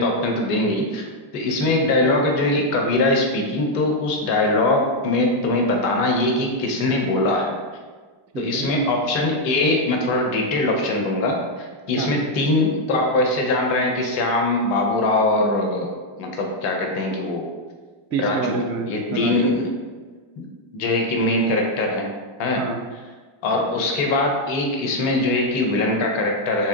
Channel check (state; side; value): late; right; 3.5 ms